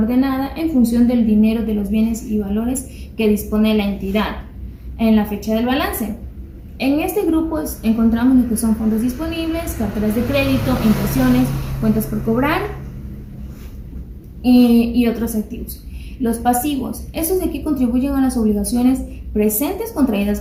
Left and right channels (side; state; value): both; identical; correlation 1.00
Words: en función del dinero, de los bienes y valores que dispone la entidad en la fecha del balance. En este grupo encontramos lo que son fondos disponibles, carteras de crédito, impresiones, cuentas por cobrar y otros activos. Los pasivos. Estos de aquí contribuyen a las obligaciones presentes contraídas